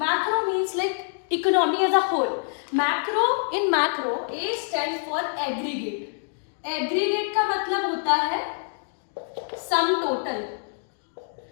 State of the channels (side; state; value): right; silent; digital silence